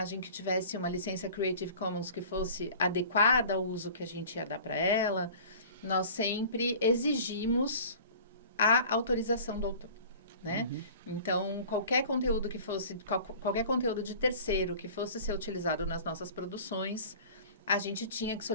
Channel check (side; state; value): both; inverted; correlation -0.44